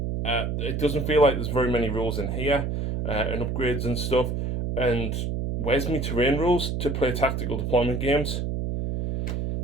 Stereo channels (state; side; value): noise; right; hum, 2 dB below the sound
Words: It doesn't feel like there's very many rules in here, and upgrades and stuff. And where's my terrain rules to play tactical deployment games?